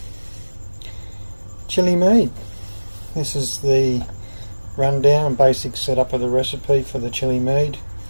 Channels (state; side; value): inverted; both; correlation -1.00